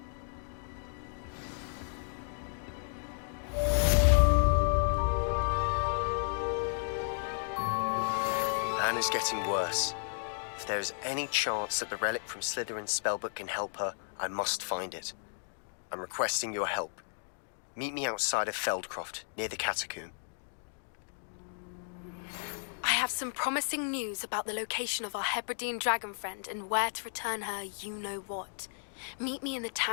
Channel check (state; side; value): silent; right; digital silence